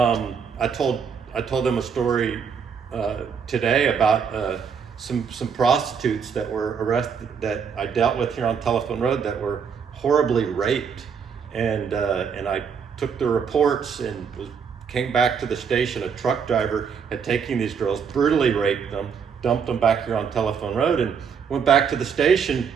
told them a story today about some prostitutes that were arrested that I dealt with here on Telephone Road that were horribly raped, and I took the reports and came back to the station. A truck driver had taken these girls, brutally raped them, dumped them back here on Telephone Road, and went back to the station,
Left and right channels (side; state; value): left; quieter; 6.6 dB